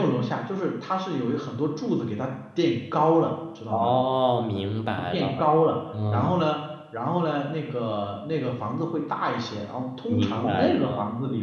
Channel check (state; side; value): identical; both; correlation 1.00